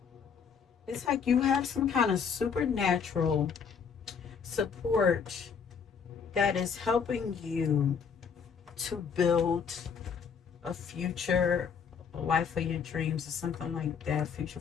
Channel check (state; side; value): quieter; right; 6.5 dB